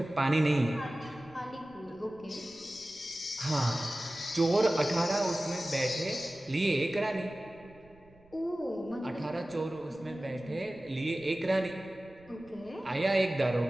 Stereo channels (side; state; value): right; noise; rumble, 27 dB below the sound